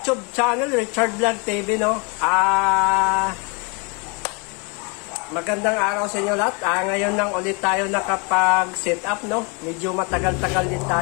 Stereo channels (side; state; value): right; quieter; 31.6 dB